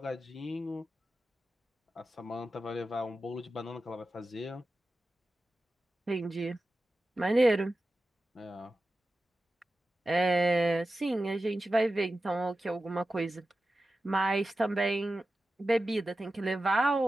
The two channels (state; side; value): normal; both; correlation 0.93